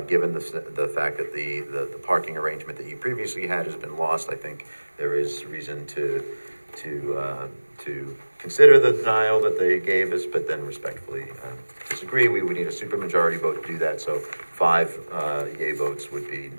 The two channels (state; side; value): inverted; both; correlation -1.00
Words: given the fact that the parking arrangement that you previously had has been lost, I think there is reason to consider the denial that they gave us, but then respectfully disagree. We would need a supermajority vote to do that, so 5 yay votes would be